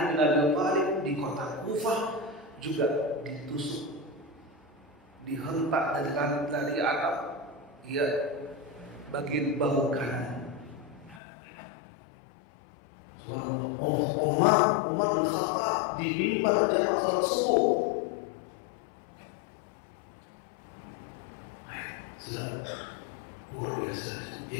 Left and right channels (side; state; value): right; drops out; at 11.2 s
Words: bin Abi Thalib di kota Kufah, juga ditusuk, dihentak dari atap, ya, bagian bahu kanan. Umar bin Khattab di mimbar jamaah salat subuh. Sudah luar biasa.